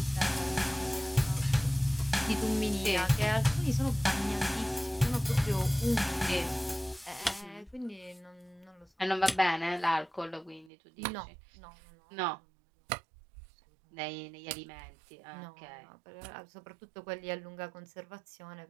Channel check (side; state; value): left; drops out; at 10.7 s